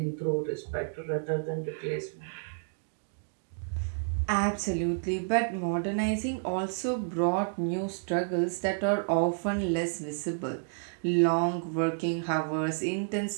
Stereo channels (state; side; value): silent; left; digital silence